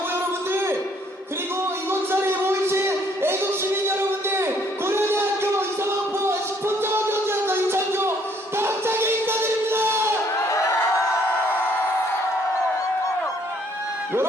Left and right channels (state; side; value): normal; both; correlation 0.65